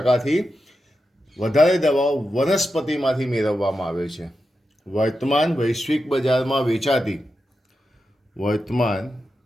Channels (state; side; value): normal; both; correlation 0.89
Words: વધારે દવાઓ વનસ્પતિમાંથી મેળવવામાં આવે છે. વર્તમાન વૈશ્વિક બજારમાં વેચાતી